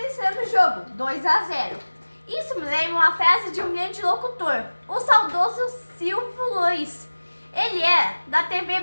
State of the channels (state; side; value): inverted; both; correlation -1.00